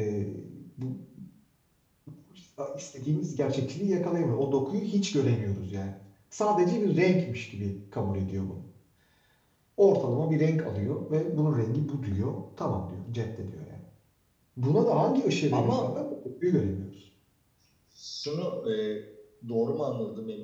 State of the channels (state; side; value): identical; both; correlation 1.00